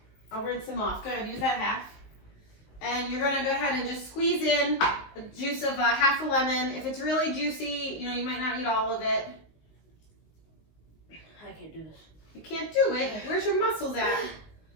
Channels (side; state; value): right; late; 19 ms